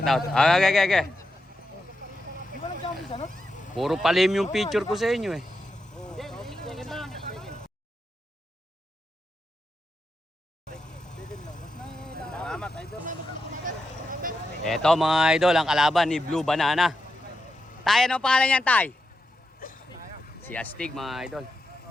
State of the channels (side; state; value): both; normal; correlation 0.86